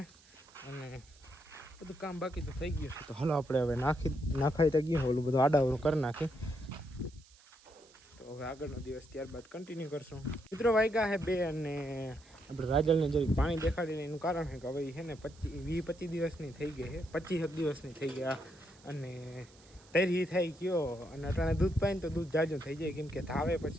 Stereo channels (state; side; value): noise; right; hiss, 26 dB below the sound